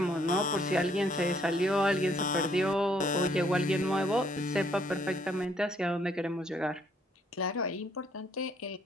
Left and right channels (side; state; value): both; normal; correlation 0.67